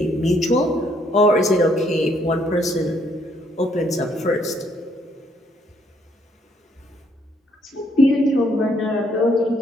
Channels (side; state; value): both; normal; correlation 0.69